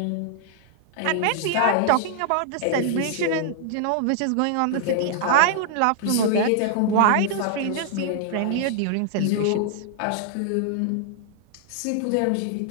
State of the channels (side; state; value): both; different; correlation -0.01